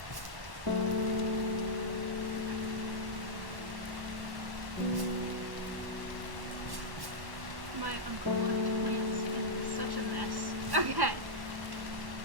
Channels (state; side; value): late; left; 1.1 ms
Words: My uncle left plants in such a mess. Okay.